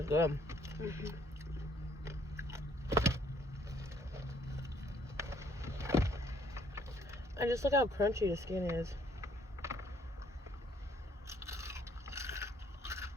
good. And just look how crunchy the skin is.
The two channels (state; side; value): normal; both; correlation 0.64